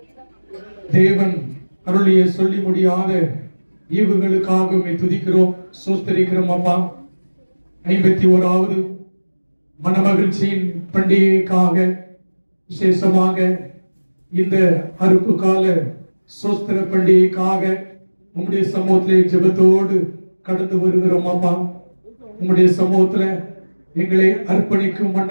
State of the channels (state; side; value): inverted; both; correlation -1.00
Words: தேவன் அருளிய சொல்லி முடியாத ஈவுகளுக்காக துதிக்கிறோம், சோஸ்தரிக்கிறோம். அப்பா, 51வது மனமகிழ்ச்சியின் பண்டிகைக்காக விசேஷமாக இந்த அறுப்பு கால சோஸ்திர பண்டிகைக்காக உம்முடைய சமூகத்திலே ஜெபத்தோடு கடந்து வருகிறோம். அப்பா, உம்முடைய சமூகத்துல எங்களை அர்ப்பணிக்கும்